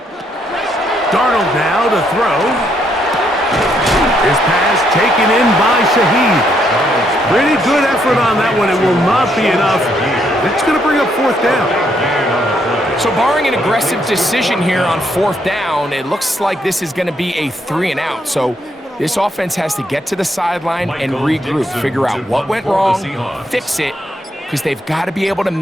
Darnold now to throw. His pass taken in by Shaheed. Pretty good effort on that one. It will not be enough. It's going to bring up 4th down. So barring an aggressive decision here on 4th down, it looks like this is going to be a 3 and out. So this offense has to get to the sideline and regroup, figure out what went wrong, fix it, because they've got to be able to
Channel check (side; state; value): both; normal; correlation 0.74